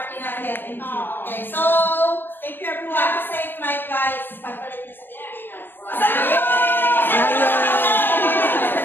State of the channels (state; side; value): late; right; 0.096 ms